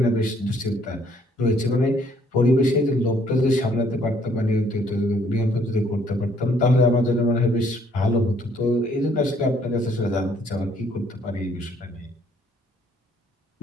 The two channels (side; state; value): both; normal; correlation 0.64